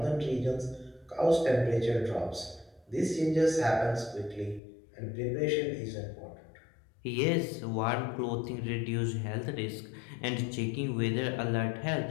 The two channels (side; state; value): right; drops out; at 4.6 s